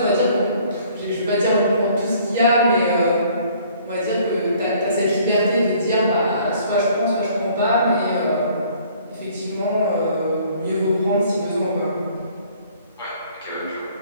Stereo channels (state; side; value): inverted; both; correlation -0.57